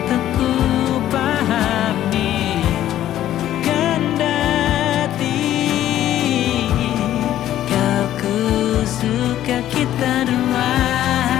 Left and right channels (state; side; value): quieter; right; 12.5 dB